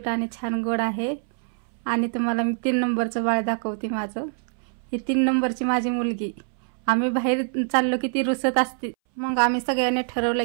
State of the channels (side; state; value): left; silent; 62 dB below the other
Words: आणि छान गोड आहे. आणि तुम्हाला मी 3 नंबरचं बाळ दाखवते माझं. ही 3 नंबरची माझी मुलगी. आम्ही बाहेर चाललो की ती रुसत असते, मग आम्ही सगळ्यांनी ठरवलं